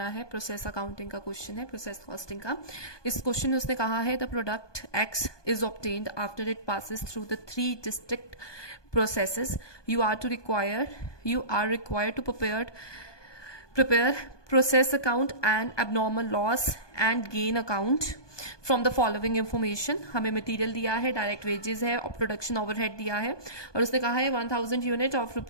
है प्रोसेस अकाउंटिंग का क्वेश्चन है, प्रोसेस कॉस्टिंग का। इस क्वेश्चन में उसने कहा है the product X is obtained after it passes through the 3 district processes. You are required to prepare process account and abnormal loss and gain account from the following information. हमें मटेरियल दिया है, डायरेक्ट वेजेस है और प्रोडक्शन ओवरहेड दिया है, और उसने कहा है 1000 unit of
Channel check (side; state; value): right; late; 1.2 ms